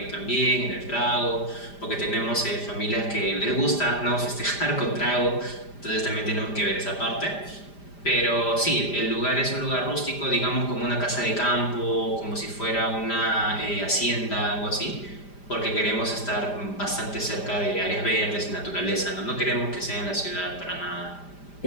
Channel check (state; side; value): late; right; 5.0 ms